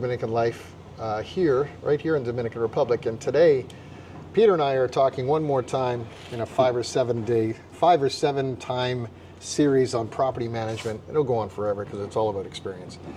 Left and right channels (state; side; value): identical; both; correlation 1.00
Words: Life right here in Dominican Republic. And today, Peter and I are talking one more time in a 5 or 7 time series on property management. It'll go on forever because it's all about experience.